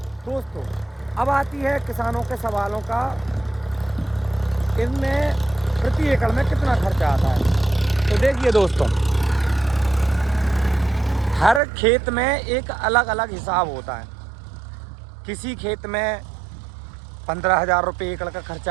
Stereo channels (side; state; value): left; drops out; at 11.6 s